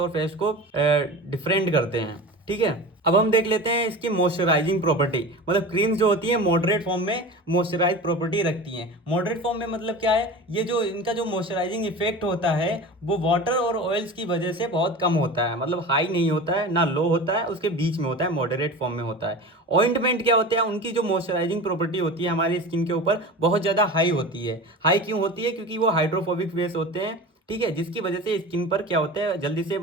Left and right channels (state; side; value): normal; both; correlation 0.32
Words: पेस्ट को डिफरेंट करते हैं। ठीक है, अब हम देख लेते हैं इसकी मॉइस्चराइजिंग प्रॉपर्टी। मतलब क्रीम्स जो होती है मॉडरेट फॉर्म में मॉइस्चराइज प्रॉपर्टी रखती हैं। मॉडरेट फॉर्म में मतलब क्या है, ये जो इनका जो मॉइस्चराइजिंग इफेक्ट होता है वो वाटर और ऑयल्स की वजह से बहुत कम होता है। मतलब हाई नहीं होता है, ना लो होता है, उसके बीच में होता है, मॉडरेट फॉर्म में होता है। ऑइंटमेंट क्या होते हैं, उनकी जो मॉइस्चराइजिंग प्रॉपर्टी होती है हमारी स्किन के ऊपर बहुत ज़्यादा हाई होती है। हाई क्यों होती है, क्योंकि वो हाइड्रोफोबिक बेस होते हैं। ठीक है, जिसकी वजह से स्किन पर क्या होता है, जल्दी से